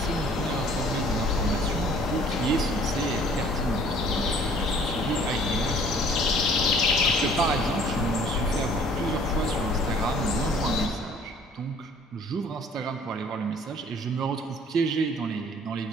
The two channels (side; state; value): both; normal; correlation 0.55